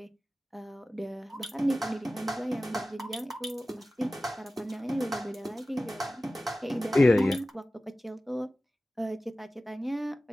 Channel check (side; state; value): both; normal; correlation 0.95